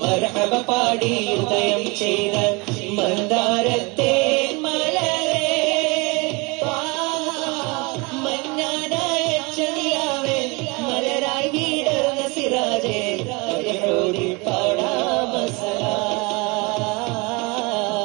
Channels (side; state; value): left; quieter; 27.5 dB